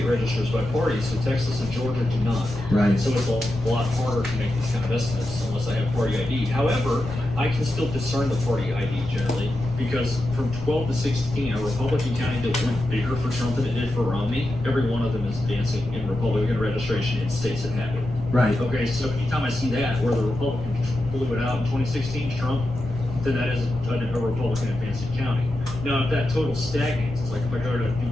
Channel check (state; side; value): noise; left; rumble, 11 dB below the sound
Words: registers by party, so Texas and Georgia do not. Right. So it's a lot harder to make these kind of estimates unless I have party ID. However, I can still discern the party ID generally because from 12 to 16, a Republican county that went bigger for Trump than it did for Romney, every one of them is advancing in Republican registration in states that have it. Right. Okay, so anytime I see that, where the Republicans blew it out in 2016, Trump, then that is a Republican advancing county. Now, if that total stagnates, it's like if I go to